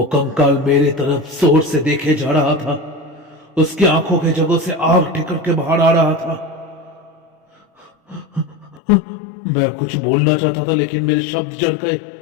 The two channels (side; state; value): right; drops out; at 8.8 s